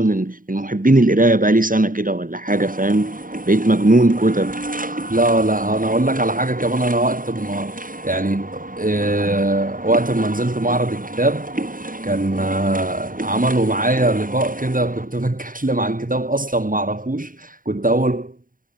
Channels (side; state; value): left; late; 0.40 ms